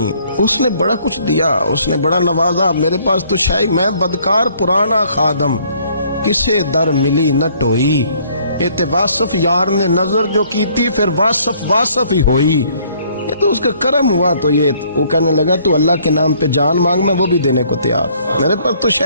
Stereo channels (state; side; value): inverted; both; correlation -0.62